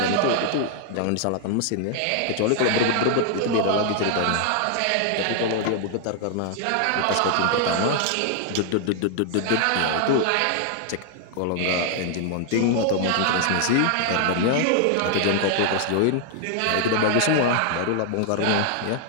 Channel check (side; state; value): both; different; correlation 0.00